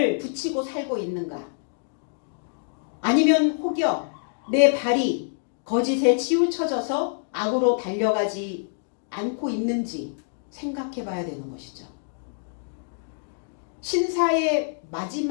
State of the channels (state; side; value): silent; right; digital silence